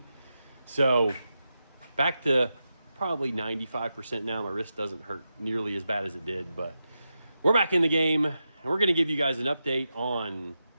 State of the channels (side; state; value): both; inverted; correlation -0.89